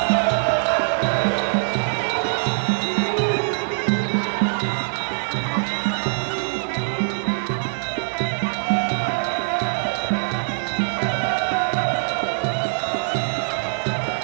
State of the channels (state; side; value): silent; left; digital silence